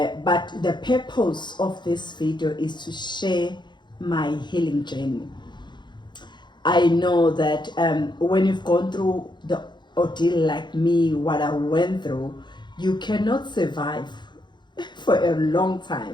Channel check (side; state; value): right; late; 0.22 ms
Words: but the purpose of this video is to share my healing journey. I know that when you've gone through the ordeal like me, what I went through, you cannot survive for a long